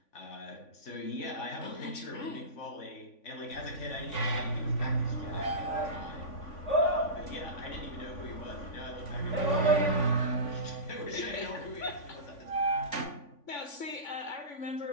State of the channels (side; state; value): right; late; 3.5 ms